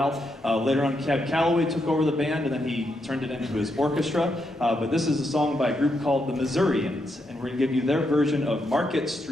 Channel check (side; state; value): both; normal; correlation 0.81